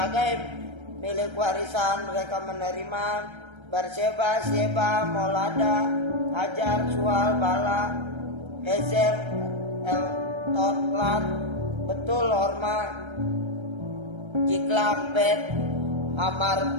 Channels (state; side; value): late; left; 1.3 ms